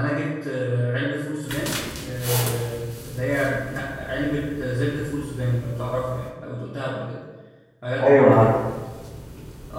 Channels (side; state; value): both; identical; correlation 1.00